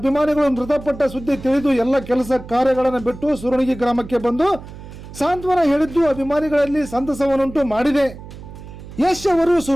ಮೃತಪಟ್ಟ ಸುದ್ದಿ ತಿಳಿದು ಎಲ್ಲ ಕೆಲಸ ಕಾರ್ಯಗಳನ್ನು ಬಿಟ್ಟು ಸುರಣಗಿ ಗ್ರಾಮಕ್ಕೆ ಬಂದು ಸಾಂತ್ವನ ಹೇಳಿದ್ದು ಅಭಿಮಾನಿಗಳಲ್ಲಿ ಸಂತಸವನ್ನುಂಟು ಮಾಡಿದೆ. ಯಶ್ ಅವರು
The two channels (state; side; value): noise; right; hum, 15 dB below the sound